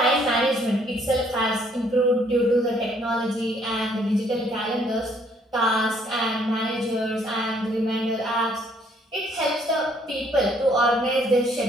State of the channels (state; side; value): normal; both; correlation 0.65